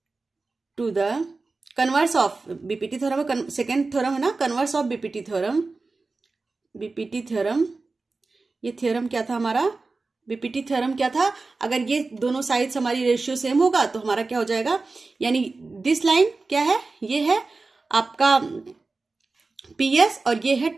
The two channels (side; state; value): left; quieter; 3.8 dB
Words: to the converse of BPT theorem, second theorem है ना, converse of BPT theorem. BPT theorem, ये थ्योरम क्या था हमारा, बीपीटी थ्योरम क्या था, अगर ये दोनों साइड्स हमारी रेशियो सेम होगा तो हमारा क्या हो जाएगा, यानी दिस लाइन क्या है, ये है आपका पीएस और ये है